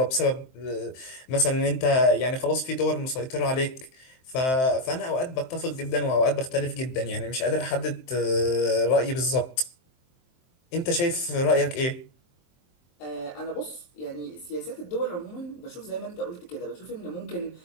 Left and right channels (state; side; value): late; right; 23 ms